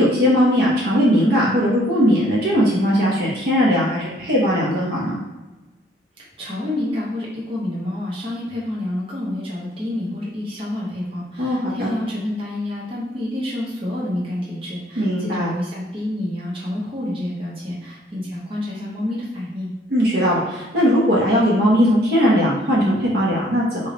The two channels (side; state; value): both; normal; correlation 0.63